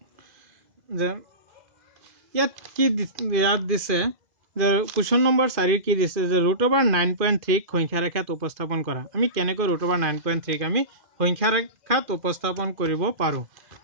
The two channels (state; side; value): late; left; 2.0 ms